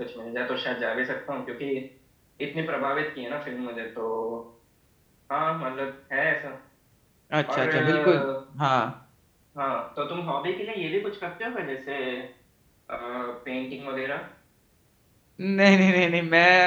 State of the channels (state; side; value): identical; both; correlation 1.00